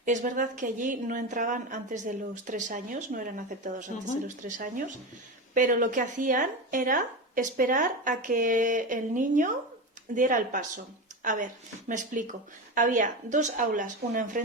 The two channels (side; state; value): both; normal; correlation 0.20